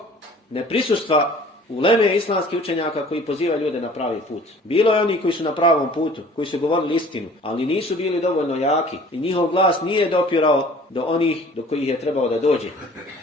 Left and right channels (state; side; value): normal; both; correlation 0.50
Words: neprisustva uleme islamskih učenjaka koji pozivaju ljude na pravi put. Bilo je oni koji su na pravom putu, koji su govorili istinu, ali nisu bili dovoljno jaki i njihov glas nije dopirao do onih do kojih je trebao da dođe.